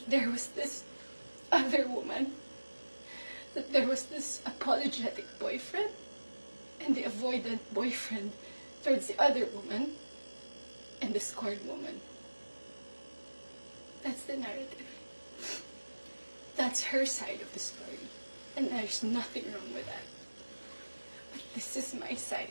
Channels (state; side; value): inverted; both; correlation -1.00